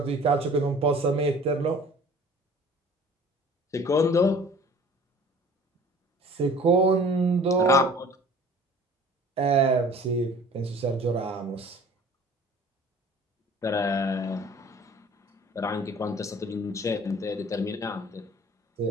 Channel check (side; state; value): both; normal; correlation 0.48